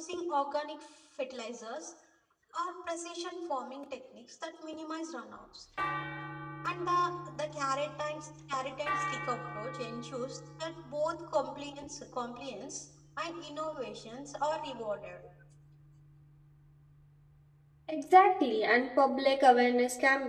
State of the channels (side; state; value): both; identical; correlation 1.00